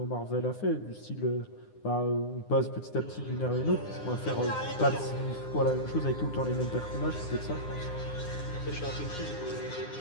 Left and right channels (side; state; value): right; late; 9.8 ms